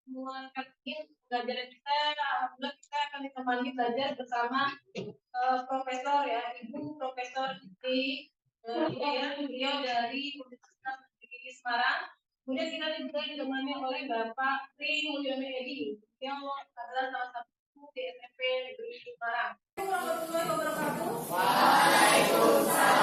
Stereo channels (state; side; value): identical; both; correlation 1.00